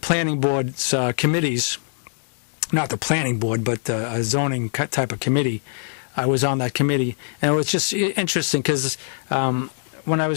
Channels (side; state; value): right; silent; 64 dB below the other